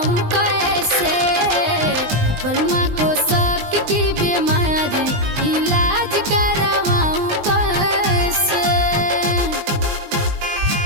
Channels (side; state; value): left; late; 20 ms